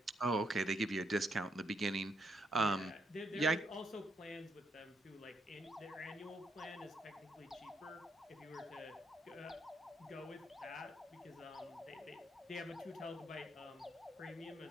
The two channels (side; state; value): both; normal; correlation 0.76